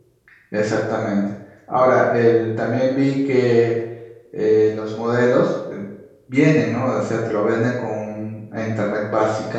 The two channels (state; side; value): identical; both; correlation 1.00